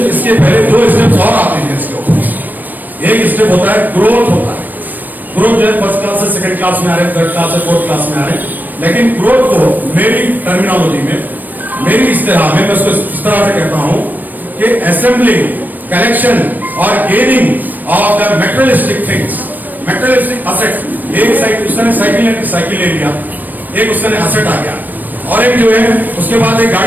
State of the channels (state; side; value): late; left; 0.087 ms